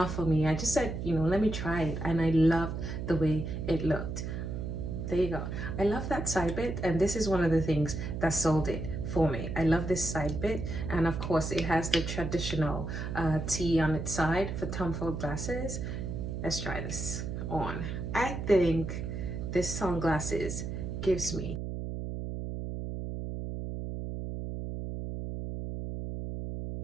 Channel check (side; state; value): right; noise; hum, 5 dB below the sound